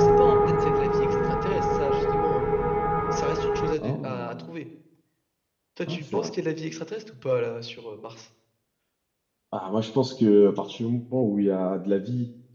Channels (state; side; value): identical; both; correlation 1.00